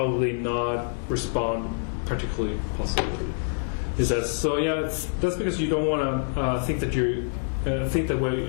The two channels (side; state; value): right; silent; 61 dB below the other